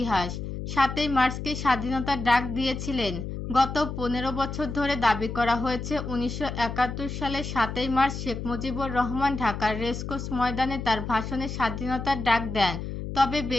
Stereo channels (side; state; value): left; noise; hum, 6 dB below the sound